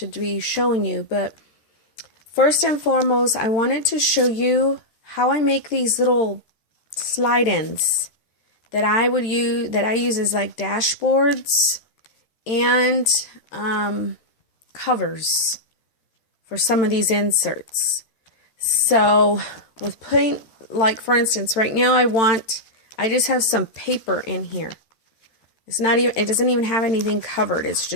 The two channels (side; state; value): right; late; 13 ms